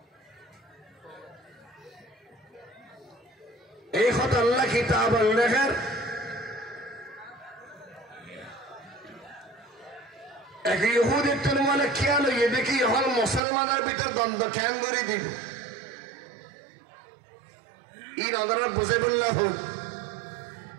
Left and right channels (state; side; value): drops out; left; at 13.4 s